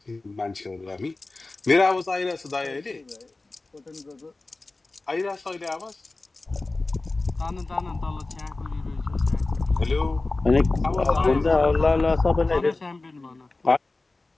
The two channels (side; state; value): right; quieter; 3.3 dB